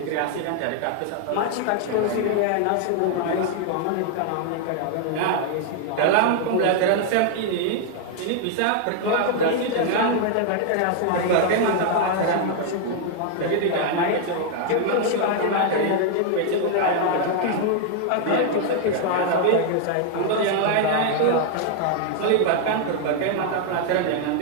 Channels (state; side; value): different; both; correlation 0.00